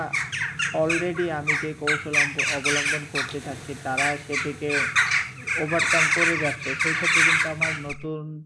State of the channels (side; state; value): both; identical; correlation 1.00